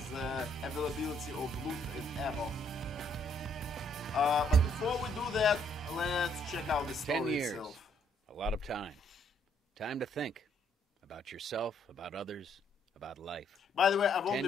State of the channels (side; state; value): both; normal; correlation 0.69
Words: the availability of loot and ammo. But before we do that, let's check out the story 10 years, itself. A lot of time. Time to think about yourself, about others, about life. By the way, I've only